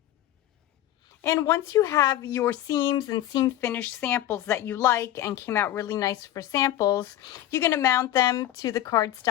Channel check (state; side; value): quieter; right; 12.8 dB